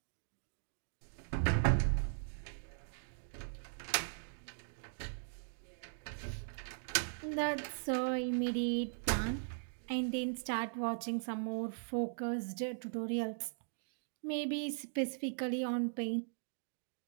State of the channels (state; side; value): silent; left; digital silence